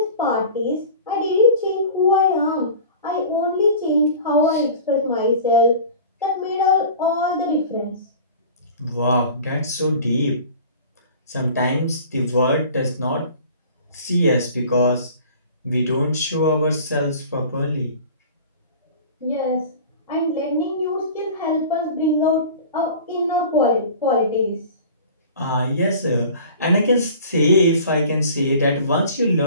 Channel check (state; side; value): inverted; both; correlation -0.41